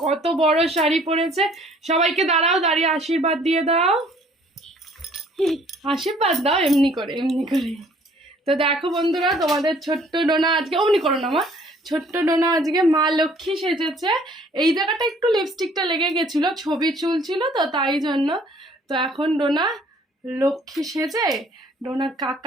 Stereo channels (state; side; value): normal; both; correlation 0.58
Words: কত বড় শাড়ি পরেছে। সবাইকে দাঁড়াও, দাঁড়িয়ে আশীর্বাদ দিয়ে দাও। আশীর্বাদ দাও এমনি করে, এমনি করে। তো দেখো বন্ধুরা, তোমাদের ছোট্ট ডোনা আজকে অমনি করো না মা, ছোট্ট ডোনা আজকে মা লক্ষ্মী সেজেছে। এই জায়গাটা একটু লিপস্টিকটা লেগে গেছিল, ছবি চুল ছিল তো তাই জন্য। তো এখন ডোনা লক্ষ্মী সেজে ডোনার